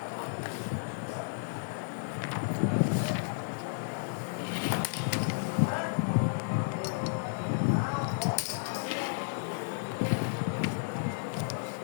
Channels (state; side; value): silent; right; digital silence